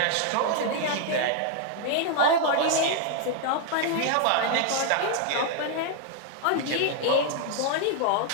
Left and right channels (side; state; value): both; different; correlation 0.00